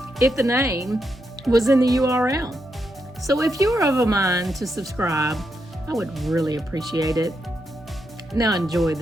if the name was in the URL. So if you're of a mind to subscribe, I would really appreciate it. Now enjoy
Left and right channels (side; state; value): both; normal; correlation 0.83